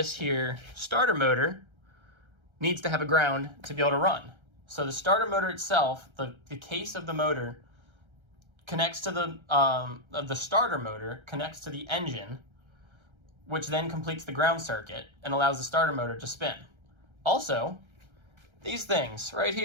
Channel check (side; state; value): left; late; 1.3 ms